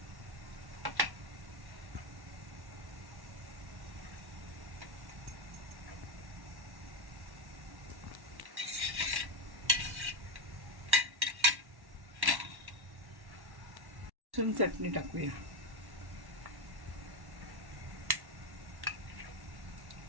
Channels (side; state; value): left; late; 1.1 ms